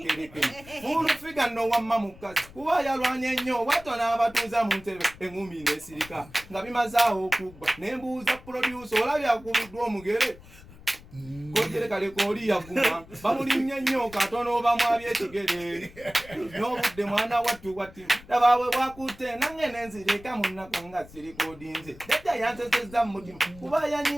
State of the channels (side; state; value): left; noise; rumble, 20 dB below the sound